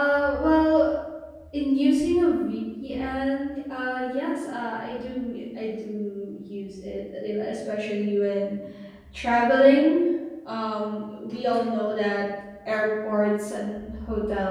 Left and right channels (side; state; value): both; identical; correlation 1.00